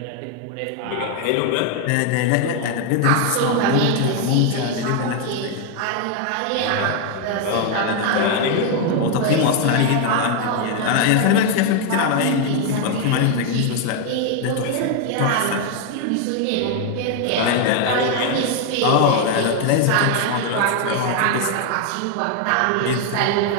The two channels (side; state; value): both; different; correlation 0.01